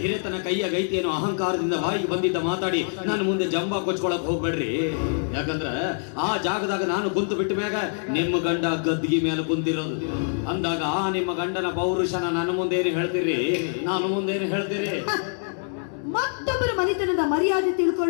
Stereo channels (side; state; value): right; silent; 62 dB below the other